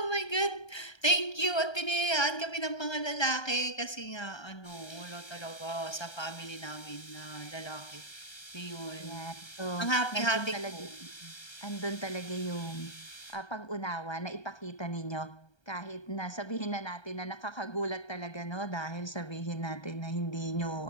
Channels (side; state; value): right; late; 1.3 ms